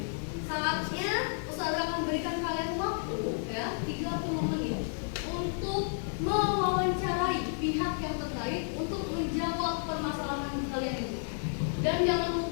Saatnya Ustazah akan berikan kalian waktu ya 30 menit untuk mewawancarai pihak yang terkait untuk menjawab permasalahan kalian itu. Dan jangan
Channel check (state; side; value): silent; right; digital silence